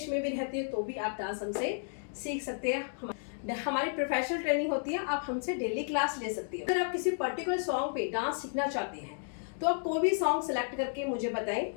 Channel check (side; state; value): right; silent; digital silence